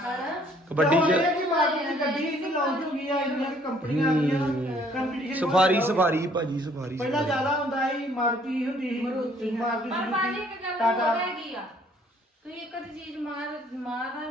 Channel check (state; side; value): normal; both; correlation 0.61